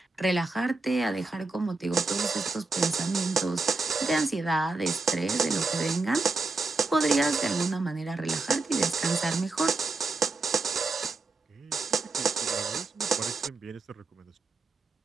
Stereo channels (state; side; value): quieter; left; 3.6 dB